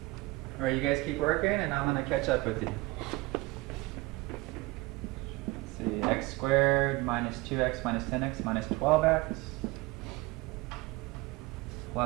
All right, you guys keep working, and I'm going to catch up with you. Let's see, x squared minus 2x minus 10x minus 12x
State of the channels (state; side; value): quieter; left; 22.1 dB